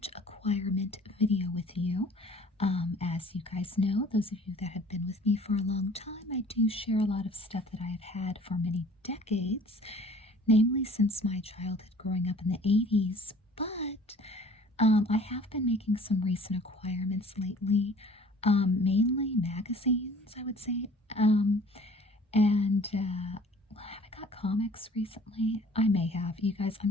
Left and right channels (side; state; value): both; normal; correlation 0.51